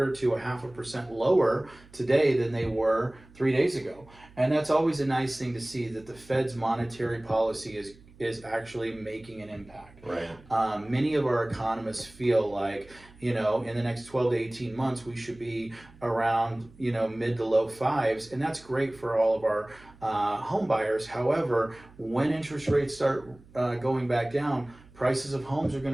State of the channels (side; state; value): right; noise; hum, 24 dB below the sound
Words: to 0.5% lower today than they were 3 days ago. And that's always a nice thing to see, that the Fed's monetary policy is actually making an impact. Right. Many of our economists feel like, in the next 12 to 18 months, we should be around, mid to low fives, and that's great for all of our home buyers. However, when interest rates start going back down, prices of homes are